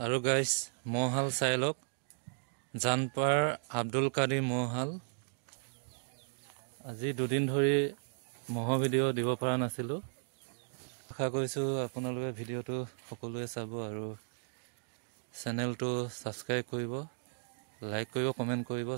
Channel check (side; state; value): left; silent; digital silence